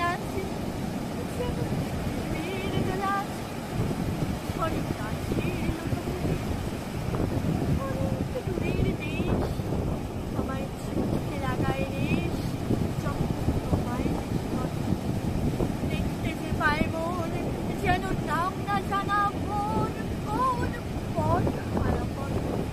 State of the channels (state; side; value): identical; both; correlation 1.00